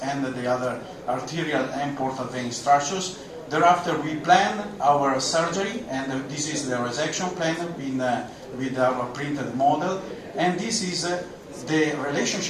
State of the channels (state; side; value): identical; both; correlation 1.00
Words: and the other arterial and portal vein structures. Thereafter we plan our surgery, and this is the resection plan with our printed model, and this is the